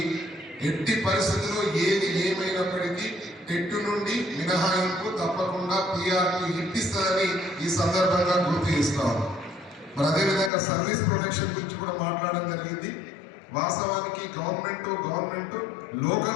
ఎట్టి పరిస్థితుల్లో ఏది ఏమైనప్పటికీ టెట్టు నుండి మినహాయింపు తప్పకుండా పిఆర్పి ఇప్పిస్తుందని ఈ సందర్భంగా గుర్తు చేస్తాం. మరి అదేవిధంగా సర్వీస్ ప్రొటెక్షన్ గురించి కూడా మాట్లాడడం జరిగింది. వాస్తవానికి government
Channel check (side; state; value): right; drops out; at 10.5 s